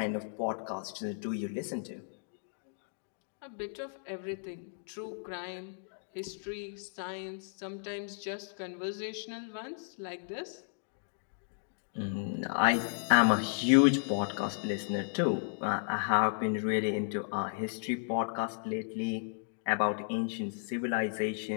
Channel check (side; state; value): right; silent; digital silence